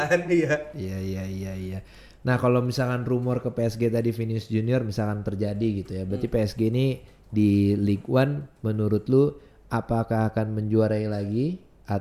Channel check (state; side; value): identical; both; correlation 1.00